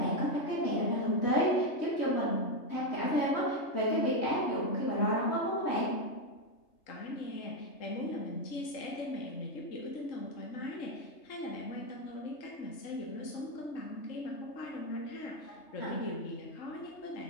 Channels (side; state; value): right; late; 3.3 ms